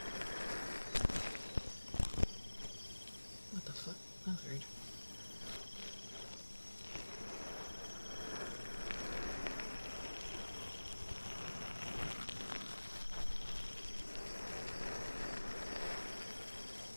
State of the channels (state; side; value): inverted; both; correlation -1.00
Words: What the fuck? That's weird.